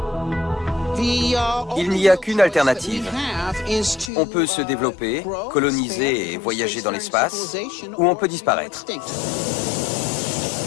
Il n'y a qu'une alternative. On peut se développer, coloniser et voyager dans l'espace, ou on peut disparaître.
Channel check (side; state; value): right; drops out; at 4.1 s